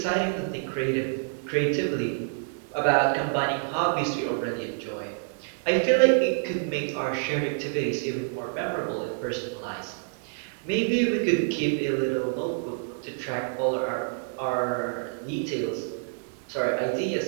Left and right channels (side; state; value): left; silent; 60 dB below the other